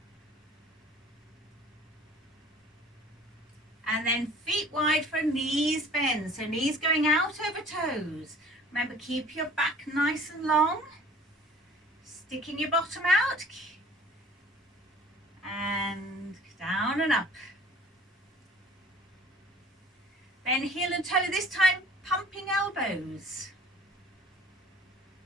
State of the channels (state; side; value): normal; both; correlation 0.50